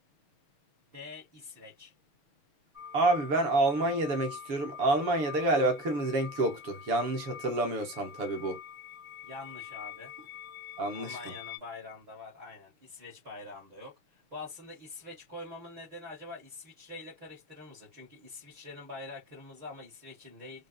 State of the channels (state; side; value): late; left; 6.9 ms